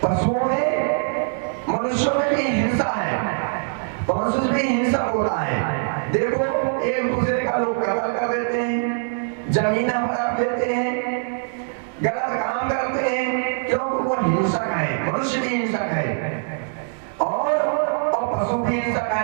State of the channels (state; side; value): silent; left; digital silence